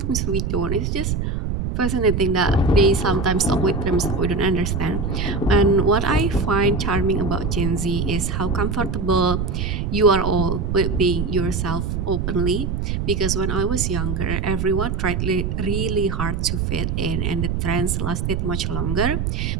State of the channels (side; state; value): right; noise; rumble, 1 dB below the sound